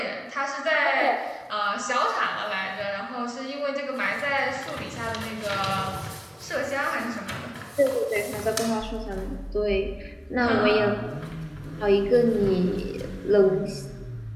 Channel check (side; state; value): both; identical; correlation 1.00